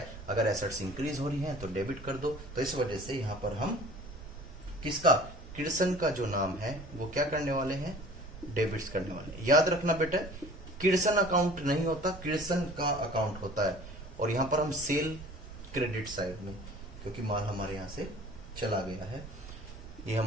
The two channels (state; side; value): noise; right; rumble, 14 dB below the sound